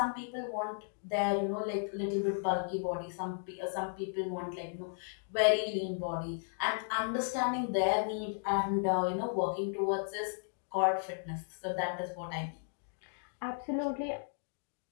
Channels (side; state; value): right; silent; digital silence